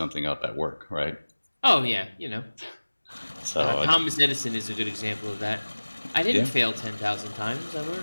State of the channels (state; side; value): inverted; both; correlation -1.00